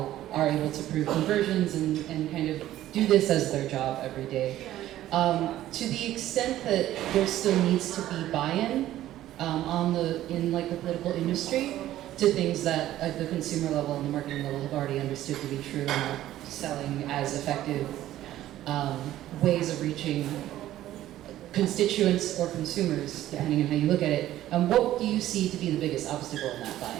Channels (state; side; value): quieter; left; 13.7 dB